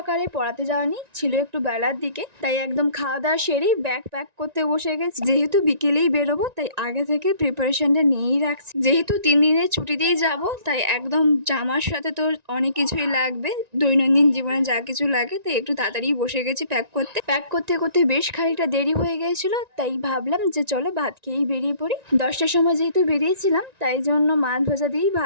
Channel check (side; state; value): left; late; 1.9 ms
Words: পড়াতে যাওয়ানি ছিল একটু বেলার দিকে, তাই একদম খাওয়া দাওয়া সেরেই ব্যাগ প্যাক করতে বসে গেছি। যেহেতু বিকেলেই বেরোবো তাই আগে থেকে প্রিপারেশনটা নিয়েই রাখছি। যেহেতু 3 দিনের ছুটিতেই যাব, তাই একদম জামার সাথে তো অনেক কিছুই লাগবে, দৈনন্দিন জীবনে যা কিছু লাগে, তাই একটু তাড়াতাড়ি বসে গেছি প্যাক করতে করতে বেশ খানিকটা দেরি হয়ে গিয়েছিল। তাই ভাবলাম যে চলো ভাত খেয়েই বেরিয়ে পড়ি। 10টার সময় যেহেতু বেরিয়েছিলাম, তাই জন্য মাছ ভাজা দিয়েই